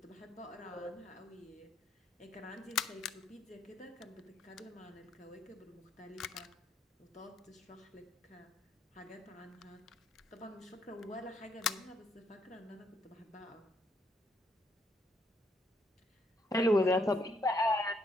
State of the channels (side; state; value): both; normal; correlation 0.73